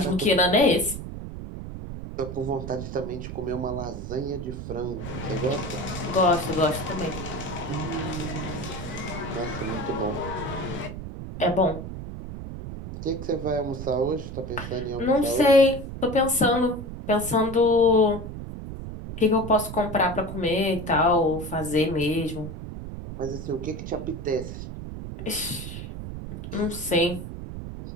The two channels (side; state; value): right; noise; rumble, 8 dB below the sound